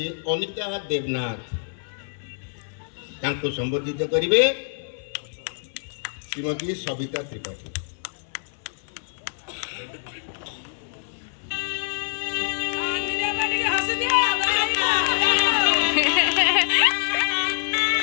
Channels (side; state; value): right; silent; digital silence